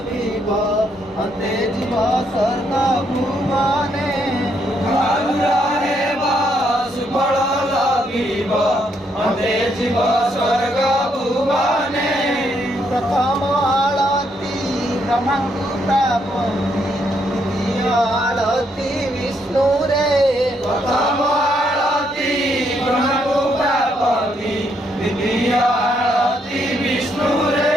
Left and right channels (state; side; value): normal; both; correlation 0.74